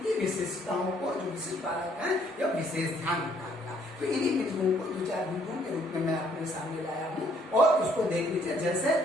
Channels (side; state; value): both; normal; correlation 0.65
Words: विशेषताओं को, जो विशिष्ट बालक है, यह विशेष ध्यान रखा गया। तो इन्हीं बिंदुओं को 2-4 बिंदुओं के रूप में मैं अपने सामने लाया हूँ और उसको देख लीजिए। जैसे